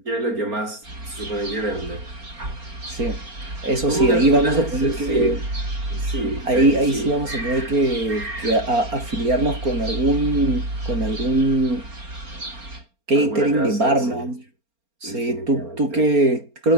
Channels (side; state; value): left; late; 4.3 ms